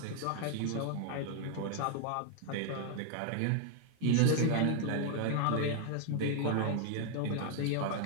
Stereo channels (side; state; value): both; different; correlation 0.00